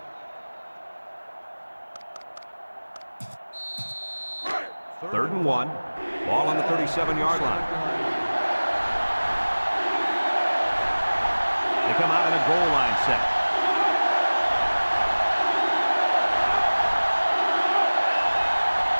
3rd and 1. Ball on the 37-yard line. They come out in a goal line set.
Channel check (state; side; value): inverted; both; correlation -1.00